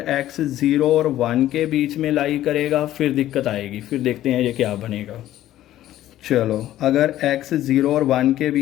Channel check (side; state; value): right; quieter; 13.5 dB